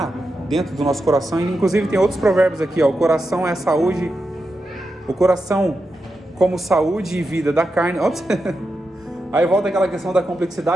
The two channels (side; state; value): both; normal; correlation 0.88